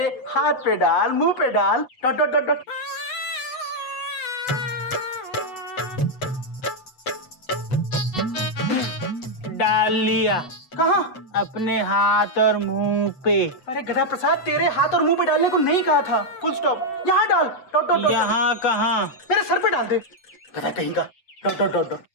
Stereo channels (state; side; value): late; right; 8.0 ms